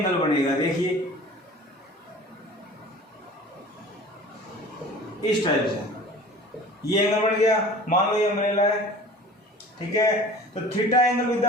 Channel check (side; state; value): both; normal; correlation 0.43